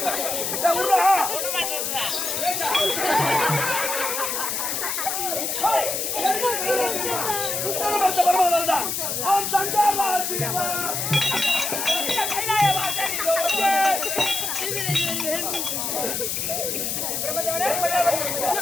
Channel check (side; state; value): left; noise; hiss, 1 dB below the sound